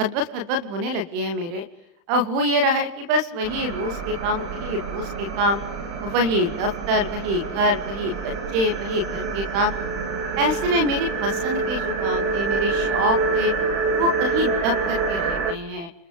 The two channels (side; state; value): left; late; 35 ms